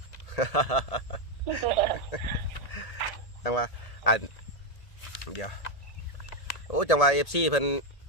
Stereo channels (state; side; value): late; right; 1.8 ms